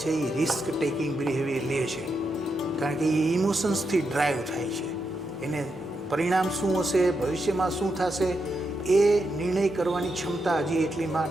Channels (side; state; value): both; normal; correlation 0.84